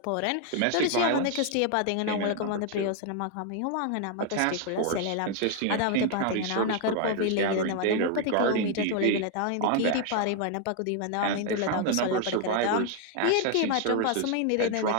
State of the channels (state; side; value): different; both; correlation 0.00